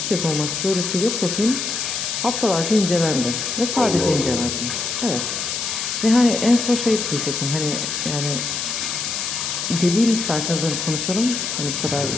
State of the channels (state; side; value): noise; left; hiss, 3 dB below the sound